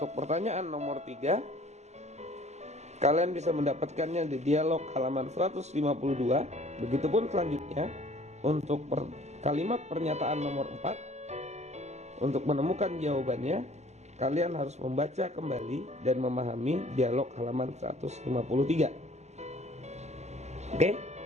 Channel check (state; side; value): late; left; 0.33 ms